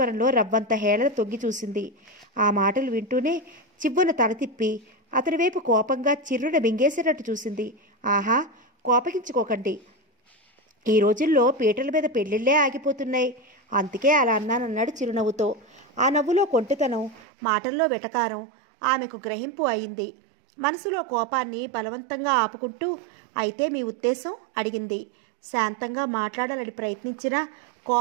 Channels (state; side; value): drops out; left; at 17.2 s